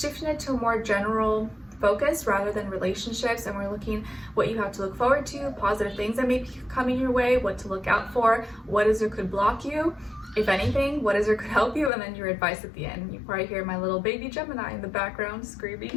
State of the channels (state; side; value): drops out; right; at 11.9 s